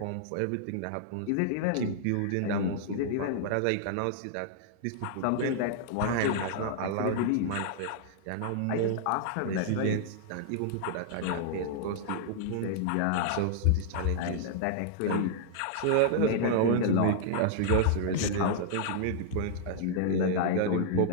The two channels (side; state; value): both; different; correlation -0.01